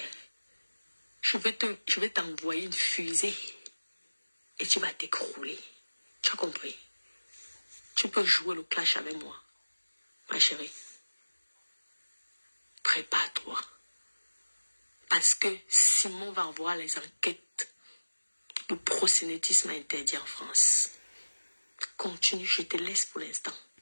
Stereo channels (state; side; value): inverted; both; correlation -1.00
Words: je vais t'envoyer une fusée. Et tu vas t'écrouler. Tu as compris? Tu peux jouer le clash avec moi. Ma chérie. Prépare-toi. Parce que Simon va voir les enquêtes. Le proxénétisme interdit en France. Continue, je te laisse pour l'instant.